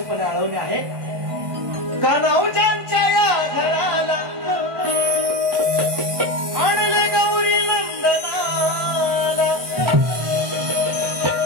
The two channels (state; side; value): late; left; 1.5 ms